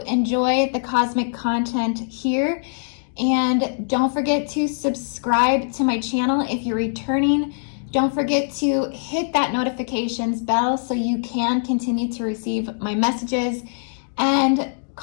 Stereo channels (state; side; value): silent; right; digital silence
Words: enjoy the cosmic content here, and don't forget to subscribe to my channel if you're returning. Don't forget to hit that notifications bell so you can continue to receive my messages, and